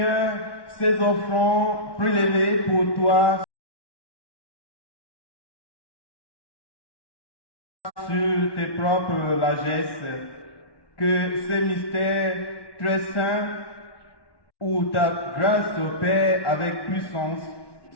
ces offrandes prélevées pour toi sur tes propres largesses, que ces mystères très saints où ta grâce opère avec puissance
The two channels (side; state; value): right; late; 1.1 ms